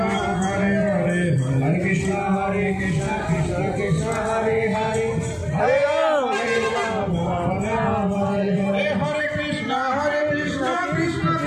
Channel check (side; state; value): both; identical; correlation 1.00